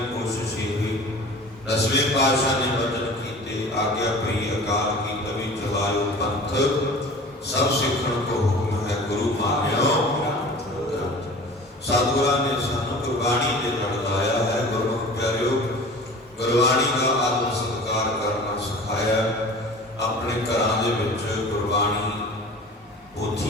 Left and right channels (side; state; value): both; normal; correlation 0.41